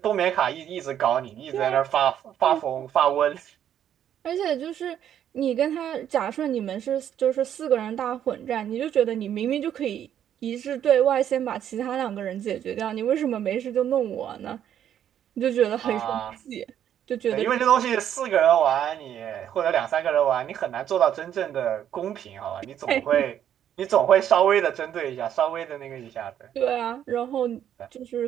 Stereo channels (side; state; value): left; quieter; 10.0 dB